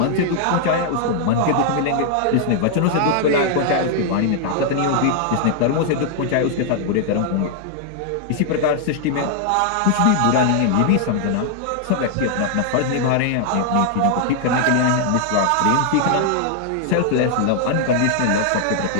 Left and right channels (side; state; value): both; different; correlation 0.00